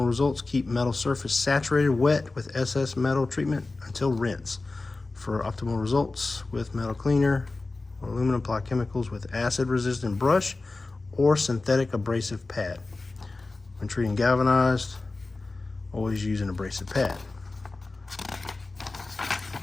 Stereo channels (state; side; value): quieter; right; 3.4 dB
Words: results, keep metal surface saturated wet with SS metal treatment until rinse. For optimal results with metal cleaner, aluminum, apply chemicals with acid-resistant brush or synthetic abrasive pad. When treating galvanized, always use an abrasive pad.